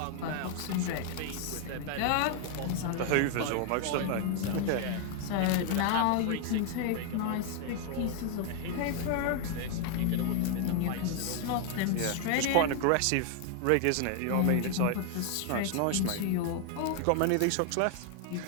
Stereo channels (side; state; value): both; different; correlation 0.00